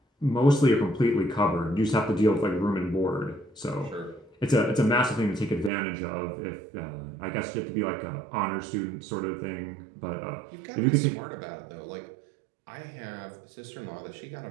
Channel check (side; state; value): left; drops out; at 5.7 s